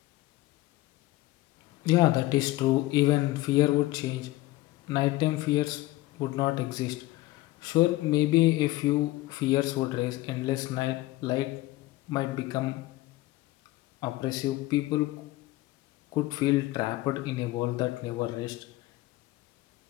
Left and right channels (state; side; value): quieter; right; 18.1 dB